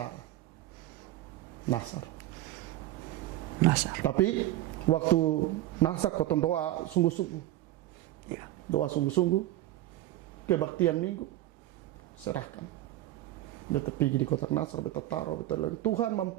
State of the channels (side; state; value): left; quieter; 15.2 dB